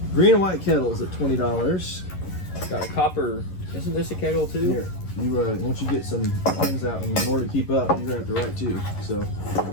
Green and white kettles at $20. Got a copper. Isn't this a kettle too? Here, you once you get some pins out, and in order to keep up, you're gonna have to write too. So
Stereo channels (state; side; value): late; right; 11 ms